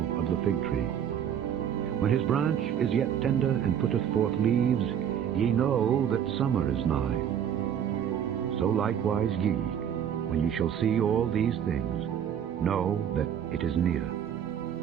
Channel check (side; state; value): left; quieter; 9.0 dB